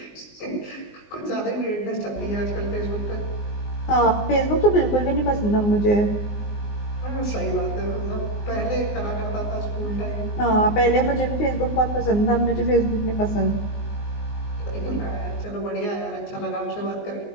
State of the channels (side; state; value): right; late; 19 ms